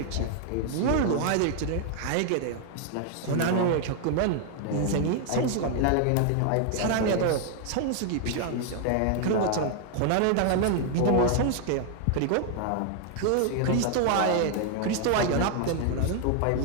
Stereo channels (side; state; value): both; different; correlation 0.00